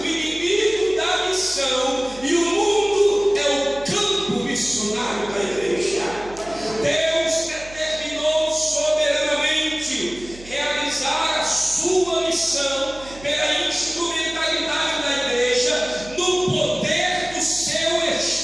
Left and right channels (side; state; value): right; noise; hum, 19 dB below the sound